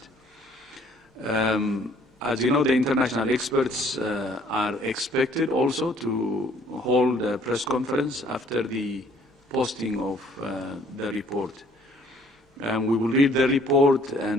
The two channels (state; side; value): normal; both; correlation 0.60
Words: As you know, the international experts are expected also to hold a press conference after the posting of the report. We will read the report